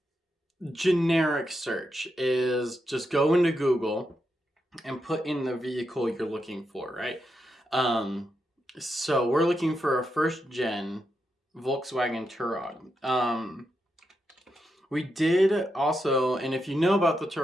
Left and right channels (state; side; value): normal; both; correlation 0.84